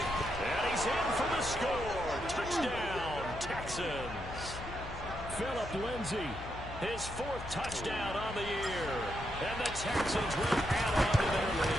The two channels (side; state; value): left; noise; hum, 12 dB below the sound